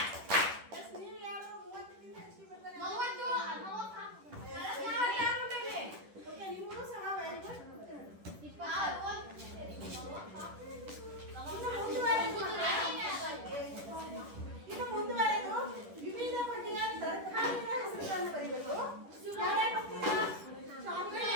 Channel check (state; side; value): late; left; 10 ms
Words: Yes, ನೀವು ಯಾರು 30ಕ್ಕಿಂತ ಹೆಚ್ಚಿಗೆ ಬರ್ತಾರೆ? Okay, ನಿಮ್ಗೂ ಸಹ very good. ಇನ್ನು ಮುಂದುವರೆದು ವಿವಿಧ ಬಗೆಯ ತರಕಾರಿಗಳ ಹೆಸರುಗಳನ್ನು ಬರೀಬೇಕು. ಯಾರ್ಯಾರು ಬರ್ತೀರಾ?